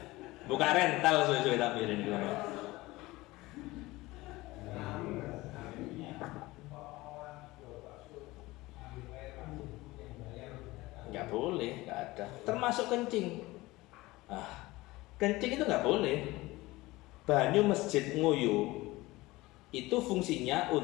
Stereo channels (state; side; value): quieter; right; 19.9 dB